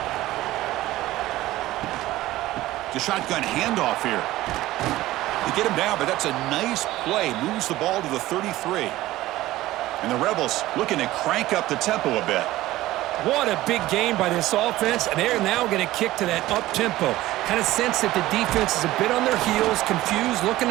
It's a shotgun handoff here. They get him down, but that's a nice play. Moves the ball to the 33. And the Rebels looking to crank up the tempo a bit. What a big game by this offense, and they're now going to kick to that up-tempo. Kind of sense that the defense is a bit on their heels, confused, looking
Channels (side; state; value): left; quieter; 16.4 dB